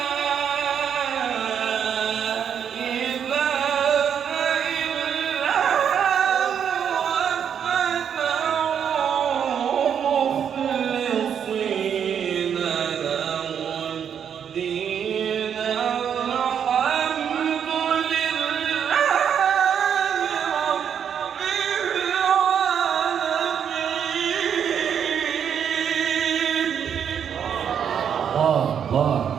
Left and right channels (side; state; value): left; quieter; 8.2 dB